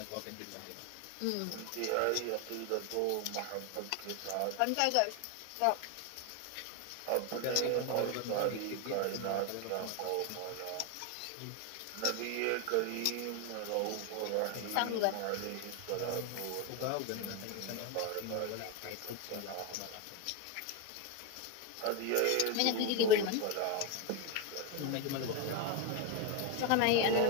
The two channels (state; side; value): different; both; correlation 0.02